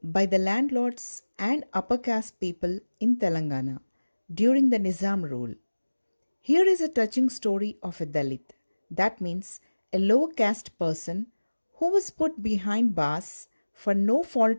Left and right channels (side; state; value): both; inverted; correlation -1.00